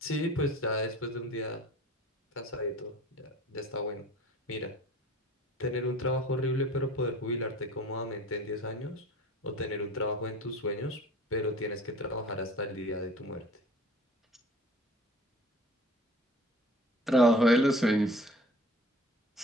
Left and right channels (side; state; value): both; normal; correlation 0.45